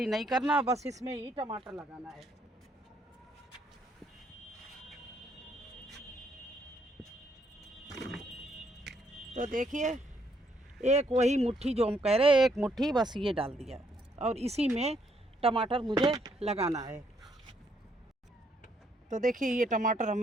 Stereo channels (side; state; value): both; normal; correlation 0.71